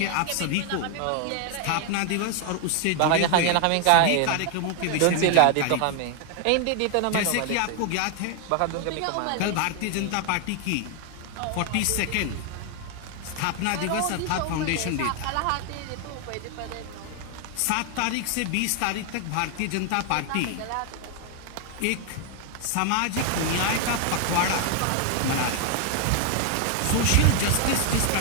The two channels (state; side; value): different; both; correlation 0.00